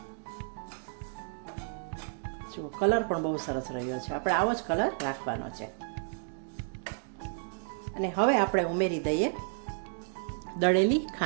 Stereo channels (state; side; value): silent; left; digital silence